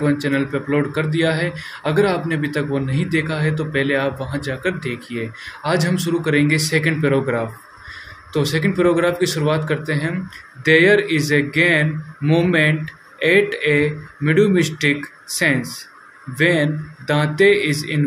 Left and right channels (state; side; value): identical; both; correlation 1.00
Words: 1 चैनल पे अपलोड कर दिया है। अगर आपने अभी तक वो नहीं देखा है तो पहले आप वहाँ जाकर देखिए। आज हम शुरू करेंगे सेकंड पैराग्राफ। तो सेकंड पैराग्राफ की शुरुआत करते हैं। There is a gain moment at a mid mystic sense when Dante is